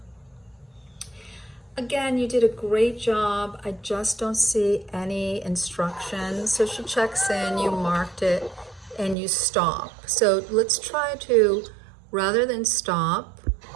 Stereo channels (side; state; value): left; drops out; at 9.2 s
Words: Again, you did a great job. I just don't see any instructions. So she checks in, you marked it, and you stop. So let's try to, rather than stop,